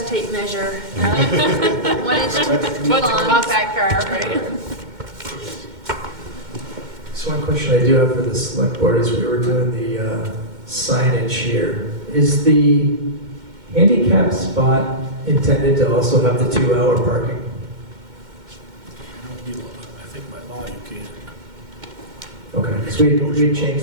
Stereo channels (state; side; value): late; left; 2.1 ms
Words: tape measure. 1 inch, 2 What's a lawns. compact car, right? So one question I do have for the select board is we were doing the signage here. Is the handicap spot intended to also have the 2-hour parking? I think by law you can. Okay, because we